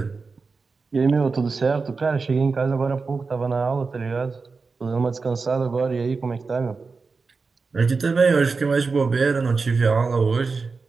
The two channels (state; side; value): quieter; left; 4.4 dB